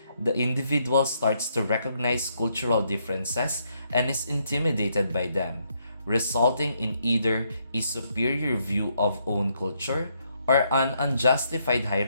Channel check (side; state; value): both; inverted; correlation -0.75